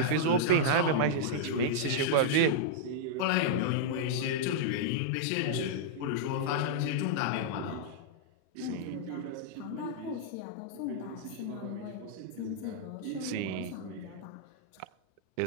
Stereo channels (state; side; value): different; both; correlation -0.02